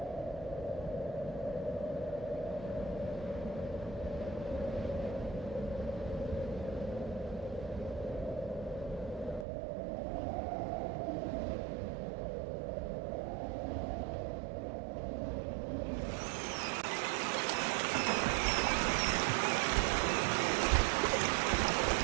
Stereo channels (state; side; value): drops out; left; at 9.5 s